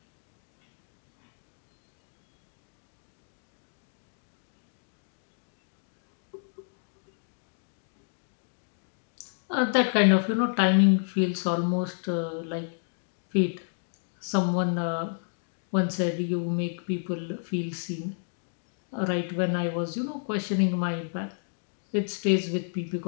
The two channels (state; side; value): silent; right; digital silence